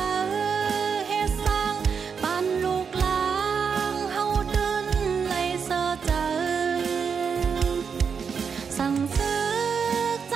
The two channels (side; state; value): left; quieter; 6.3 dB